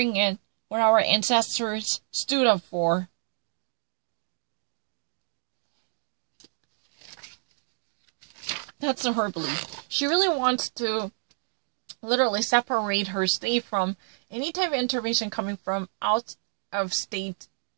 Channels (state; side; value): silent; left; digital silence